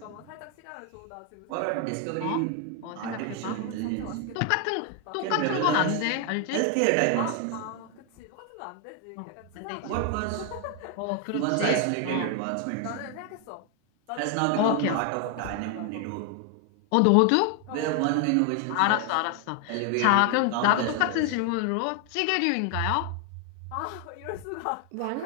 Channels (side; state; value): both; different; correlation 0.00